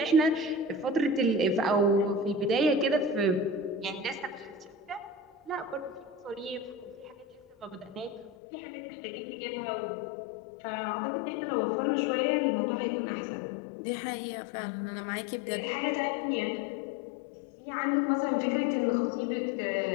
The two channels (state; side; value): drops out; right; at 8.3 s